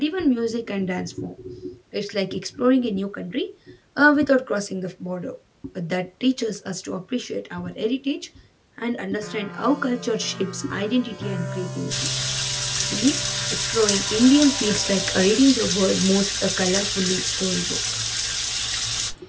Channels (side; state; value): both; identical; correlation 1.00